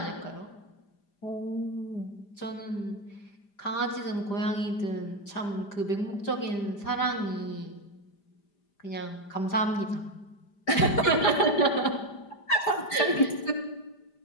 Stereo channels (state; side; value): late; right; 5.0 ms